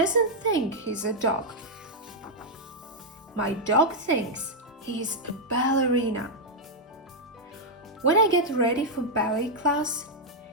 think he's a dog. My dog thinks he's a ballerina. When I get ready for ballet class,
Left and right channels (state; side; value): normal; both; correlation -0.03